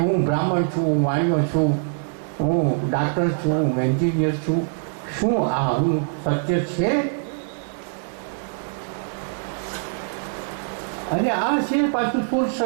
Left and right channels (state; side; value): silent; left; 63 dB below the other